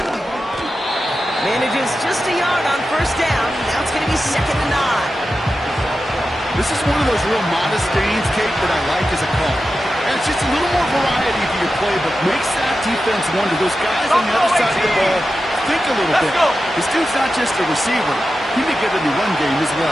Manages just a yard on 1st down. Now it's going to be 2nd and 9. This is one of those real modest gains, Kate, that I like as a call. And it's just a little more variety to your play, but makes that defense wonder. Those guys on the other side of the ball think a little bit. This dude's not just a receiver. He may get in the run game as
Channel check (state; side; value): normal; both; correlation 0.92